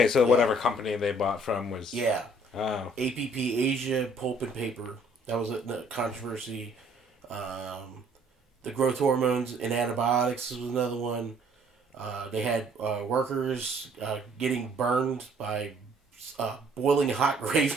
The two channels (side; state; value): both; normal; correlation 0.61